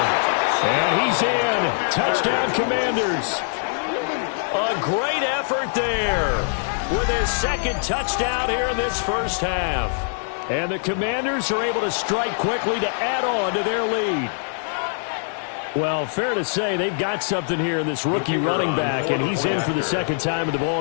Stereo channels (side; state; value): right; silent; digital silence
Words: And he's in. Touchdown, Commanders. A great effort there with his 2nd touchdown here in this first half. And the Commanders are able to strike quickly to add on to their lead. Well, fair to say they've got something here in this rookie running back, and he's in for the 2nd time of the